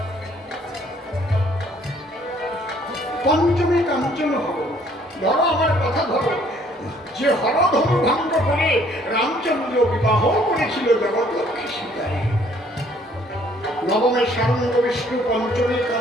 পঞ্চমী কাঞ্চন হর, ধরো আমার কথা ধরো, যে হরধনু ভঙ্গ করে রামচন্দ্র বিবাহ করেছিল জগৎলক্ষ্মী সীতায়। নবমে সারঙ্গ বিষ্ণু, পঞ্চমী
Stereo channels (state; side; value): normal; both; correlation 0.61